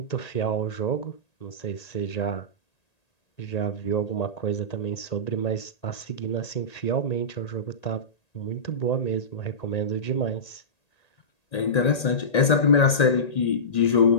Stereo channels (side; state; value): right; late; 1.8 ms